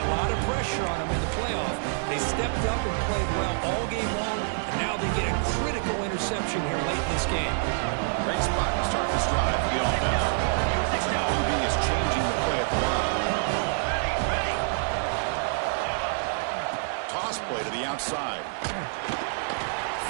lot of pressure on them in the playoff. They stepped up and played well all game long, and now they get a critical interception here late in this game. Great spot to start this drive for the offense. Looks like QB is changing the play at the line. Toss play to the outside.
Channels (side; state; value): left; silent; digital silence